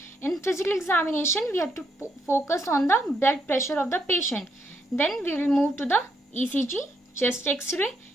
In physical examination, we have to focus on the blood pressure of the patient. Then we will move to the ECG, chest X-ray,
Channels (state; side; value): normal; both; correlation 0.76